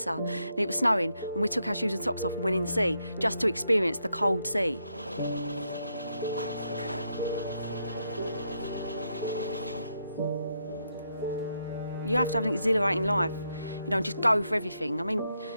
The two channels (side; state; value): both; inverted; correlation -0.79